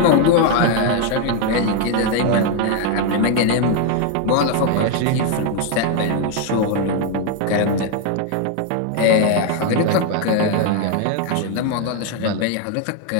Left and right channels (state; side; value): different; both; correlation 0.01